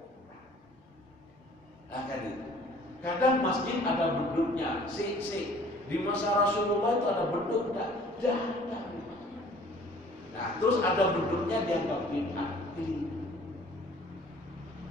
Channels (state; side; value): normal; both; correlation 0.52